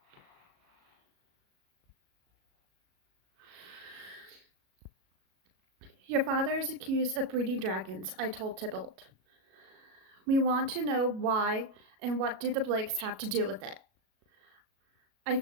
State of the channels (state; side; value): late; left; 37 ms